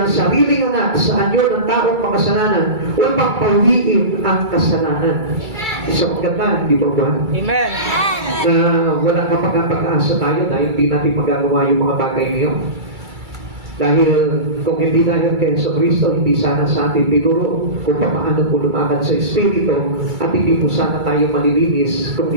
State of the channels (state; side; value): late; left; 2.3 ms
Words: sariling anak sa anyo ng taong makasalanan upang pawiin ang kasalanan. Isang maganda, di ba ba? Amen. Na walang kapag-asa tayo dahil hindi natin magagawa yung mga bagay niyo. Dahil kung hindi dahil kay Jesucristo, hindi sana sa atin tinuro kung paano po lumakad sa Espiritu at hindi po sana tayo malilinis kung